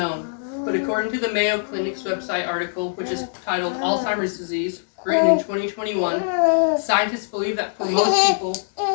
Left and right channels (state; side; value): silent; right; digital silence